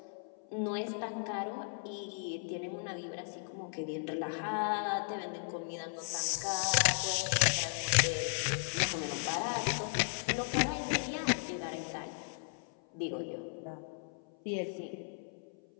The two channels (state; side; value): silent; right; 54 dB below the other